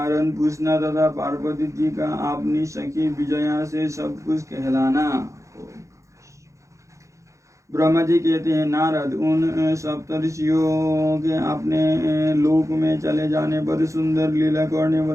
पूछना तथा पार्वती जी का अपनी सखी विजया से सब कुछ कहलाना। ब्रह्मा जी कहते हैं, नारद, उन सप्तर्षियों के अपने लोक में चले जाने पर सुंदर लीला करने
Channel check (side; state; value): left; late; 0.15 ms